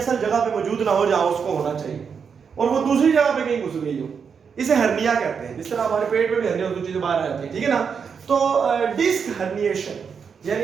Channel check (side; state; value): left; quieter; 6.4 dB